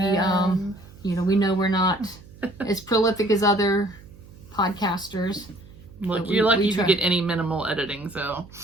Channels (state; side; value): noise; right; hum, 21 dB below the sound